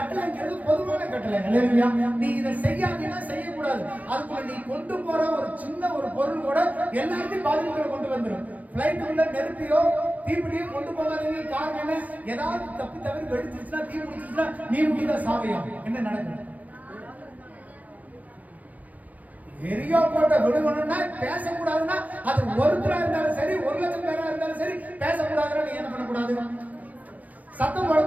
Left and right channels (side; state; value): left; late; 0.077 ms